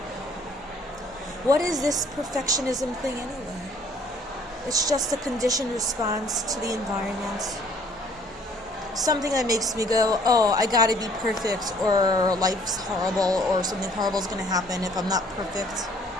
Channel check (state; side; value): normal; both; correlation 0.59